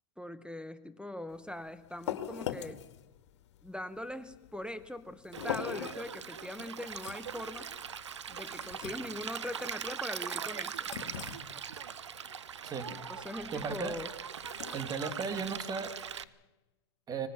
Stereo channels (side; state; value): both; normal; correlation 0.34